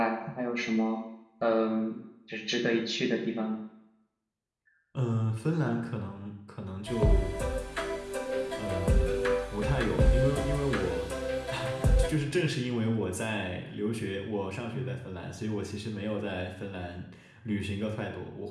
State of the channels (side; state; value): both; identical; correlation 1.00